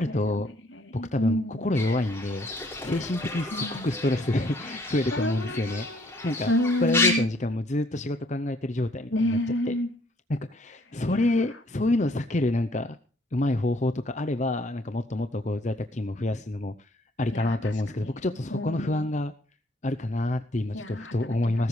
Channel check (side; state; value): both; normal; correlation 0.64